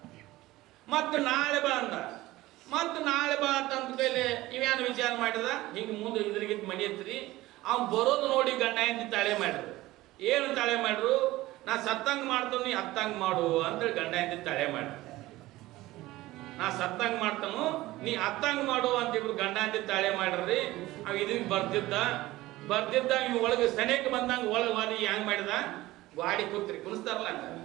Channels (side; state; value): left; quieter; 17.7 dB